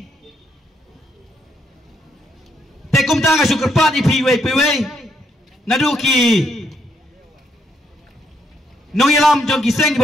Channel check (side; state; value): both; normal; correlation 0.75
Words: tekum tanga sukerpat ipiwe piwe naduki nong ilam jong kiseng